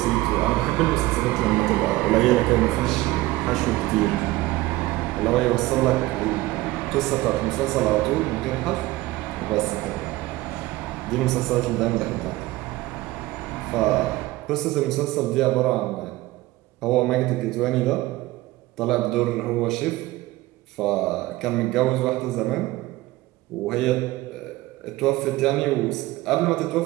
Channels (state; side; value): quieter; left; 18.5 dB